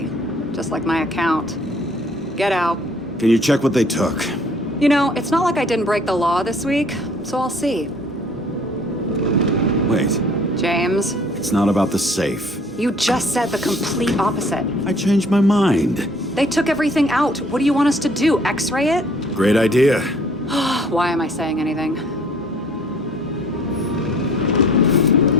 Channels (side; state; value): both; normal; correlation 0.56